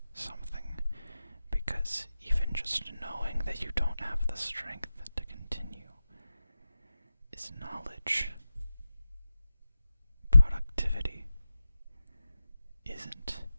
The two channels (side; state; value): both; inverted; correlation -0.92